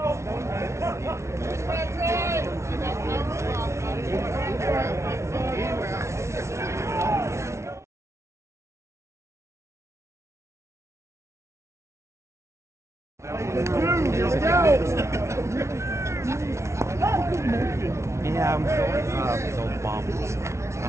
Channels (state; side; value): late; left; 0.13 ms